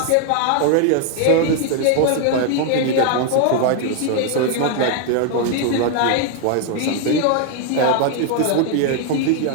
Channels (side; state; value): both; different; correlation 0.00